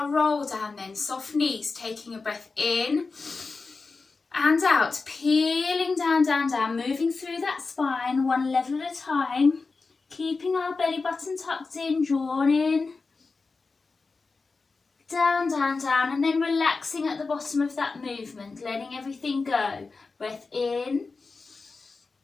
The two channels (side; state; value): right; quieter; 4.2 dB